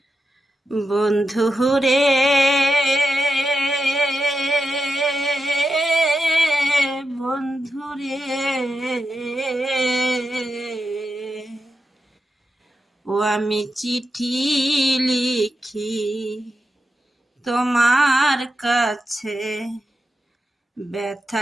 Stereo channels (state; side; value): normal; both; correlation 0.88